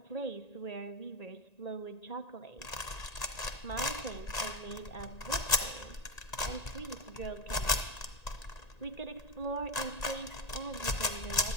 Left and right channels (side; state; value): right; late; 1.9 ms